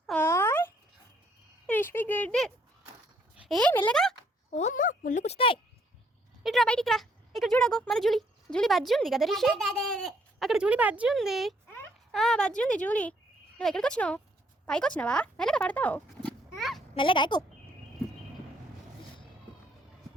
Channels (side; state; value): both; normal; correlation 0.68